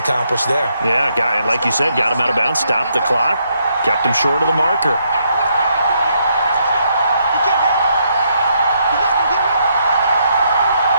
there. Yeah, like you said, got him out of bounds, stopped the clock, kept him short of the marker.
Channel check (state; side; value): inverted; both; correlation -0.75